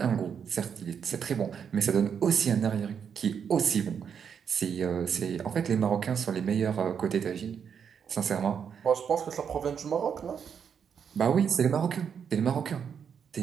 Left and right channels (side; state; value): left; quieter; 7.3 dB